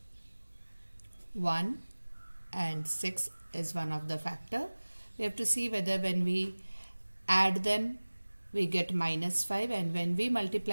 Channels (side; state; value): both; inverted; correlation -1.00